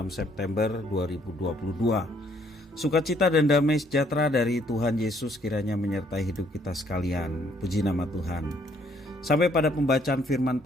September 2022. Sukacita dan damai sejahtera dari Tuhan Yesus kiranya menyertai hidup kita sekalian. Puji nama Tuhan. Sampai pada pembacaan firman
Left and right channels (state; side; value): normal; both; correlation 0.66